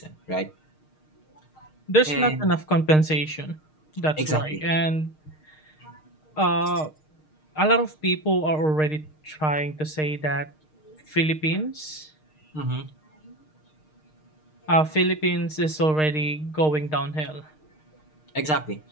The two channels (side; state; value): right; late; 6.5 ms